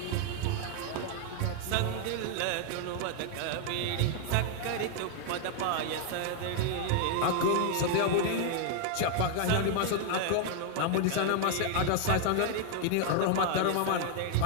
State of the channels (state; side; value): different; both; correlation 0.00